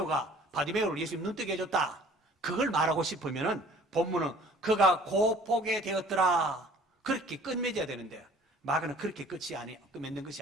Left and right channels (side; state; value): both; normal; correlation 0.52